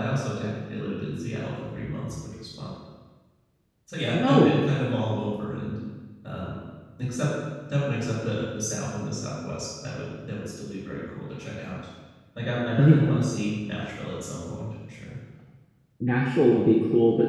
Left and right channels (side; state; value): both; identical; correlation 1.00